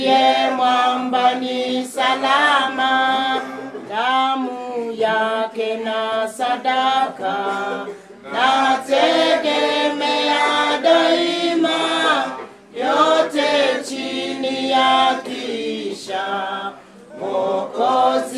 mwamba ni salama. Damu yake na sadaka, nategemea daima, yote chini ya kisha,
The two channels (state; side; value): identical; both; correlation 1.00